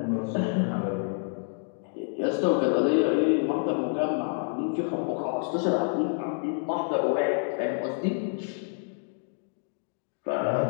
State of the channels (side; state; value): right; silent; digital silence